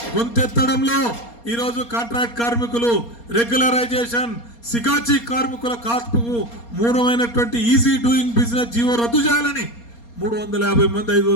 గొంతెత్తడంలో ఈరోజు కాంట్రాక్ట్ కార్మికులు రెగ్యులరైజేషన్ సిగాచి కార్మికుల కాల్పుకు మూలమైనటువంటి ఈజీ డూయింగ్ బిజినెస్ జీవో రద్దు చేయాలని 350 మంది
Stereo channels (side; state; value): right; late; 4.3 ms